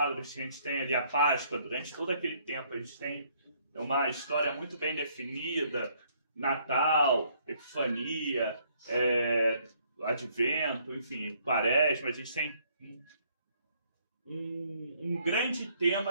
que a gente tem ali a Páscoa, durante todo aquele tempo a gente tem uma história muito bem definida, Natal, Epifania, Advento, enfim, Quaresma, a gente tem um grande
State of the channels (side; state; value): both; inverted; correlation -0.66